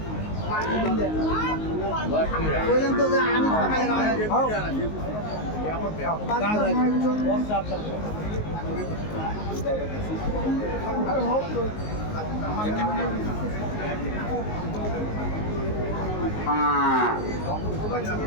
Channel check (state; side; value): late; right; 19 ms